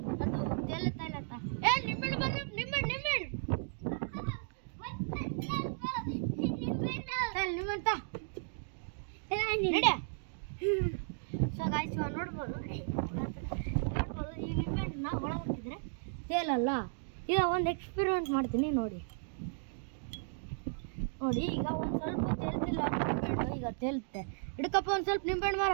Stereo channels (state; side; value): silent; left; digital silence